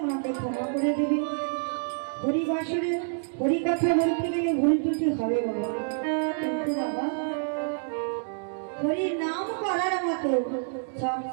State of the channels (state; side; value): silent; left; digital silence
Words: মাকে ক্ষমা করে দেবে। হরিবাসরে হরি কথা বলতে গেলে ভুল ত্রুটি হবে বাবা, কিন্তু বাবা হরির নাম করার মতো সব